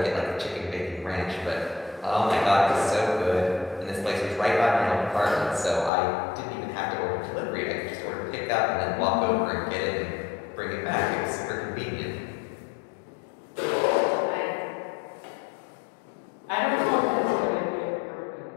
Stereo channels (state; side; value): drops out; right; at 5.9 s